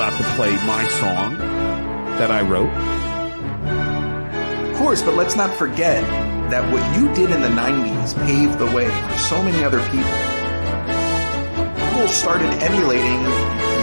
to play my song that I wrote. Of course, but let's not forget that what you did in the 90s paved the way for so many other people. People started emulating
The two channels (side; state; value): both; inverted; correlation -1.00